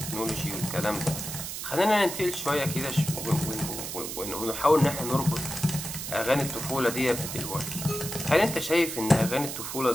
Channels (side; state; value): right; noise; hiss, 6 dB below the sound